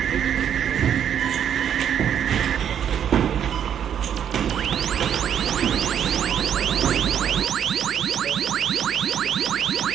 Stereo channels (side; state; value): left; quieter; 9.0 dB